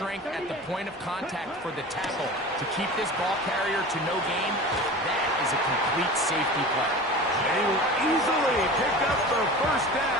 at the point of contact for the tackle to keep this ball carrier to no gain. That is a complete safety play. They will easily pick up the first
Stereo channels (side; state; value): both; normal; correlation 0.35